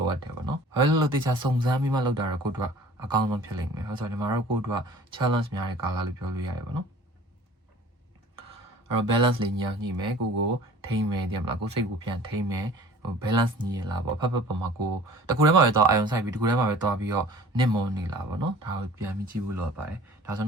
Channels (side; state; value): both; normal; correlation 0.47